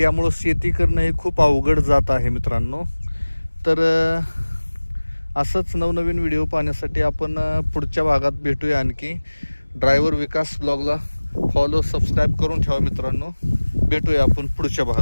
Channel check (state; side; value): inverted; both; correlation -1.00